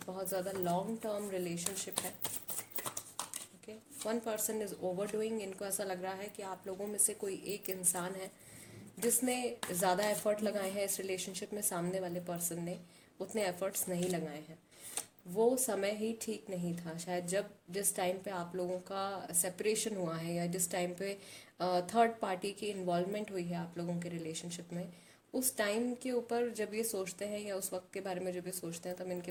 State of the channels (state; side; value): identical; both; correlation 1.00